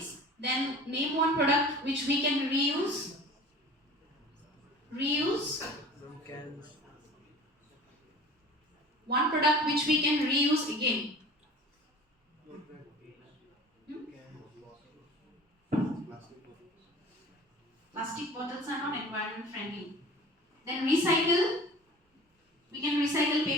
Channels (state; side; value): normal; both; correlation 0.42